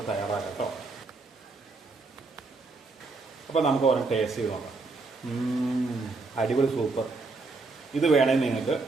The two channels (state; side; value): quieter; left; 3.8 dB